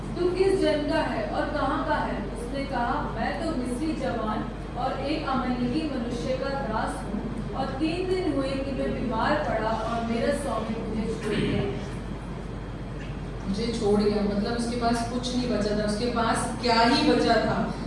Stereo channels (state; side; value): identical; both; correlation 1.00